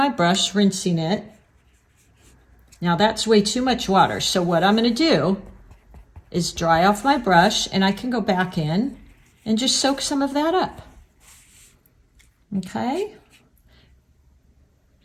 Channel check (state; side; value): identical; both; correlation 1.00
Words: brush, rinsing it. Now that's way too much water. So what I'm going to do is dry off my brush, and I can go back in and just soak some of that up. Okay.